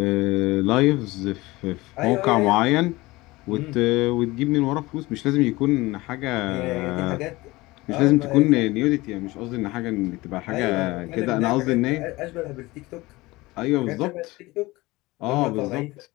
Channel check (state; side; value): quieter; right; 20.7 dB